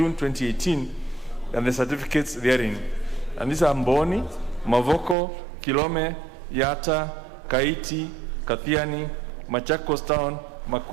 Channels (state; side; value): drops out; left; at 5.2 s